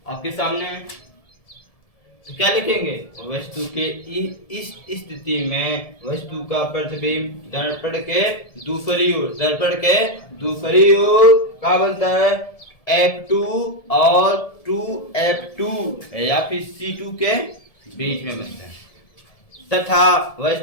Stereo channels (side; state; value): right; late; 1.7 ms